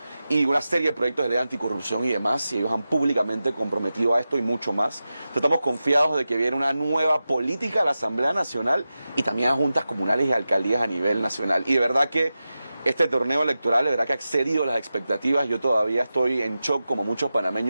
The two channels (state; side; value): inverted; both; correlation -0.93